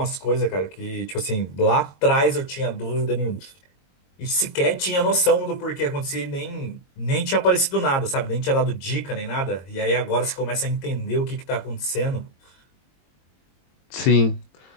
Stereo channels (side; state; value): right; late; 22 ms